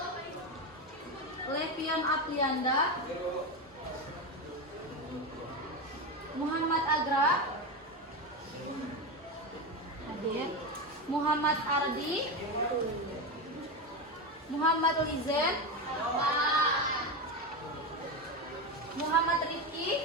Levion Aprianda, Muhammad Agra hadir. Muhammad Ardi, Muhammad Lizen, Muhammad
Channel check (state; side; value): normal; both; correlation 0.16